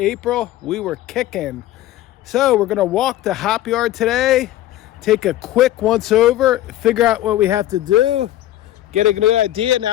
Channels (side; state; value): right; quieter; 14.1 dB